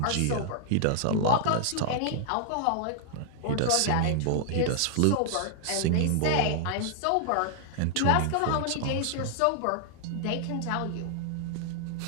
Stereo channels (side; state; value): both; different; correlation -0.01